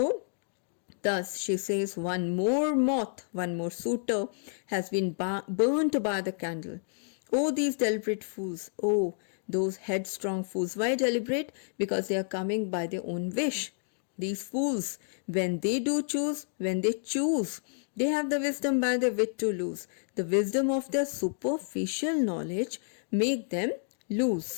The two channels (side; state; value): right; silent; digital silence